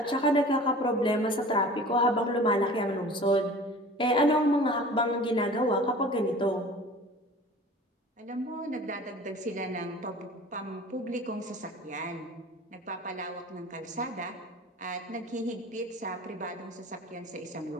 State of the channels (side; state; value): both; normal; correlation 0.42